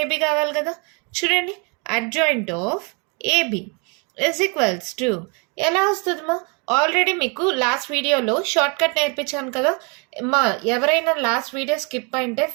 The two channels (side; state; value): left; quieter; 33.3 dB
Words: కావాలి కదా. చూడండి, adjoint of AB is equals to ఎలా వస్తుందమ్మా? ఆల్రెడీ మీకు లాస్ట్ వీడియోలో షార్ట్ కట్ నేర్పించాను కదా. ఎవరైనా లాస్ట్ వీడియో స్కిప్ అయింటే